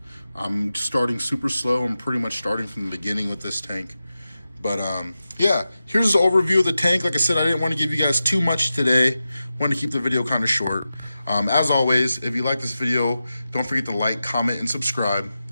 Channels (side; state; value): both; inverted; correlation -0.92